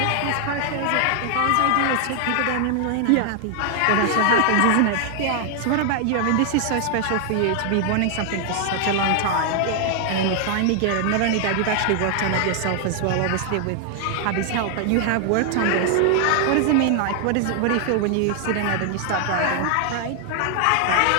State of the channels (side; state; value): both; different; correlation 0.00